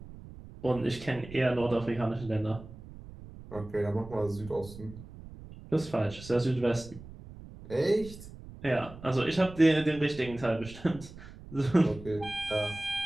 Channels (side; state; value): right; noise; rumble, 16 dB below the sound